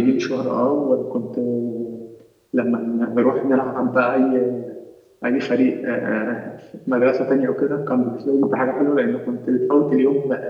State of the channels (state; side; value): identical; both; correlation 1.00